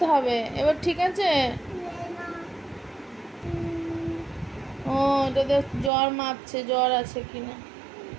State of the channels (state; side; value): drops out; left; at 5.9 s